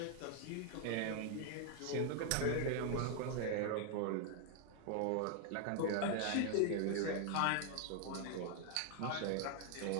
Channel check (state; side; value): different; both; correlation 0.00